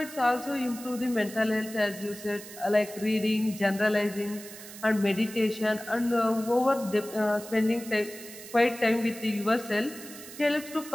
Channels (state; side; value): noise; right; hiss, 15 dB below the sound